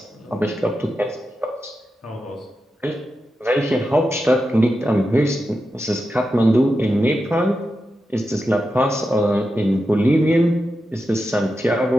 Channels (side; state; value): both; normal; correlation 0.89